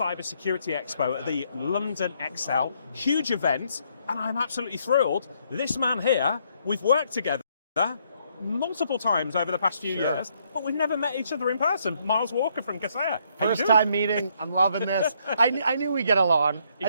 Security Expo at the London XL. Huge event, and I'm absolutely thrilled. This man here, we've worked together multiple times over the past few years, but we've never met each other in person. Miles Walker from Kaseya. First time meeting, I'm loving this. I knew we'd get along. Exactly. I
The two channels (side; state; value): both; inverted; correlation -0.71